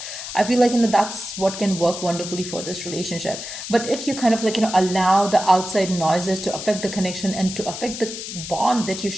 I feel like, that's what can work wonderfully for this relationship. But if you kind of like, allow the outside noises to affect the connection and to affect the bond that you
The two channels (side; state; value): left; noise; hiss, 8 dB below the sound